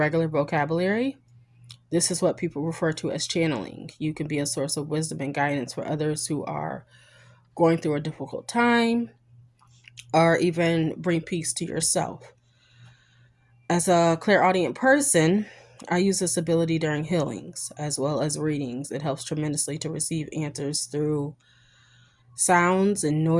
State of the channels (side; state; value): both; identical; correlation 1.00